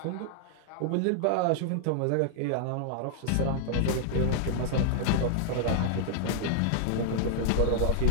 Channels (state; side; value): different; both; correlation -0.01